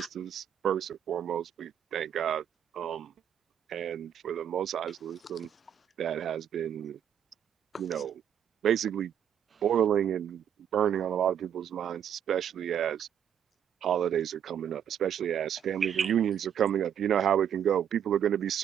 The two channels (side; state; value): left; quieter; 9.1 dB